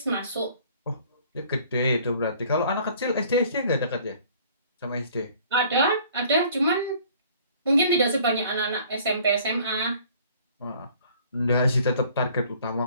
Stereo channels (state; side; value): inverted; both; correlation -0.54